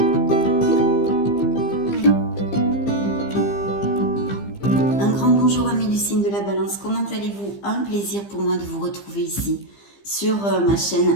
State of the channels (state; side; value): late; right; 15 ms